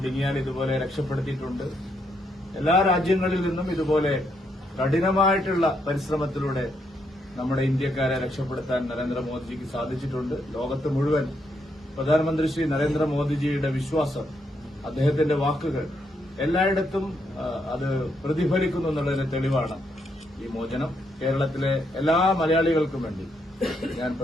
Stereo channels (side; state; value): both; normal; correlation 0.77